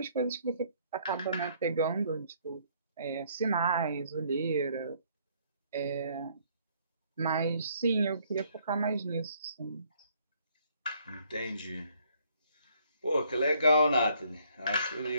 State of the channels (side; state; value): both; inverted; correlation -0.65